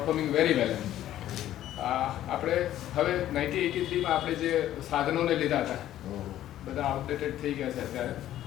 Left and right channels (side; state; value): right; quieter; 12.7 dB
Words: very well. આપણે હવે 1983માં આપણે જે સાધનોને લીધા હતા બધા આઉટડેટેડ થઈ ગયા છે અત્યારે